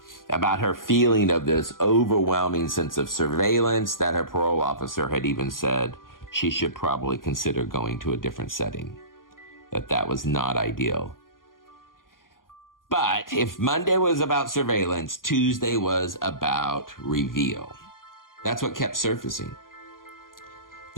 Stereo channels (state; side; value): late; right; 0.91 ms